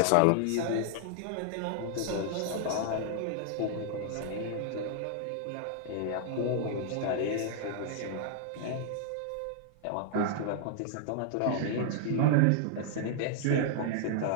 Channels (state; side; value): different; both; correlation 0.00